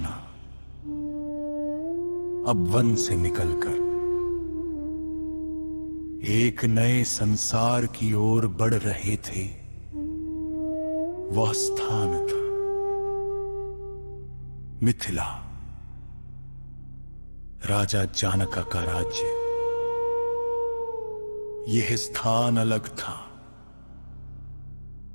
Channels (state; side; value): inverted; both; correlation -1.00